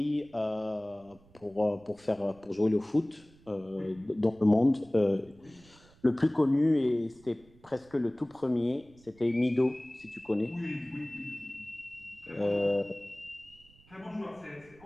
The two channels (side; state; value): right; noise; rumble, 27 dB below the sound